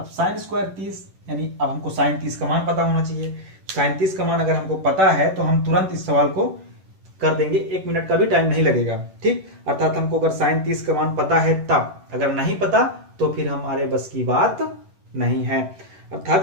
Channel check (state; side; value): late; left; 11 ms